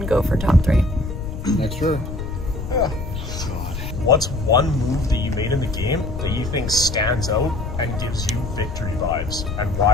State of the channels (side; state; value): left; noise; rumble, 6 dB below the sound